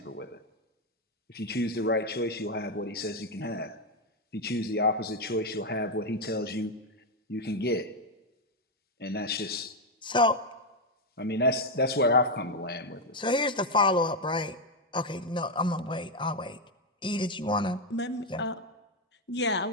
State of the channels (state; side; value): normal; both; correlation 0.04